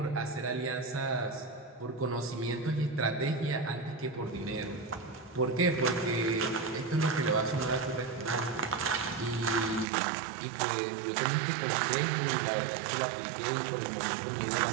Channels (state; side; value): drops out; left; at 9.9 s